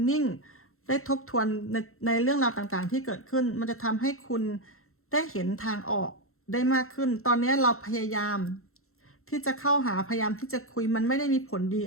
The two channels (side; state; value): right; late; 0.62 ms